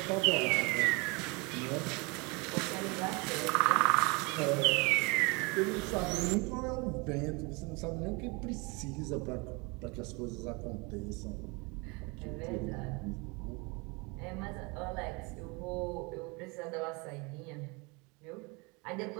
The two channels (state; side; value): quieter; left; 28.6 dB